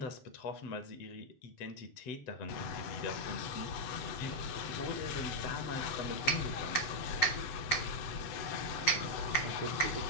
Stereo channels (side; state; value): right; late; 7.9 ms